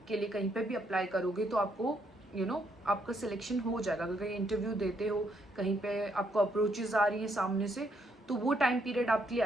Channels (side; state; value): both; normal; correlation 0.74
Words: के लिए कहीं पे भी अप्लाई करोगे तो आपको आपका सिलेक्शन हो जाएगा। अगर कहीं इंटरव्यू देते हो, कहीं पे आपको अप्रोचेस आ रही है सामने से, तो वो टाइम पीरियड आपके लिए